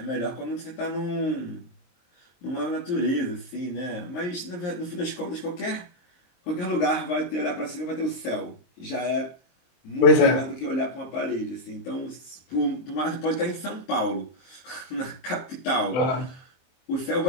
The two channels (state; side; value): late; right; 23 ms